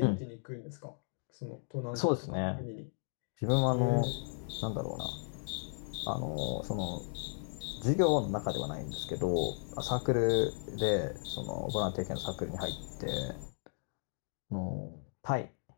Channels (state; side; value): silent; right; digital silence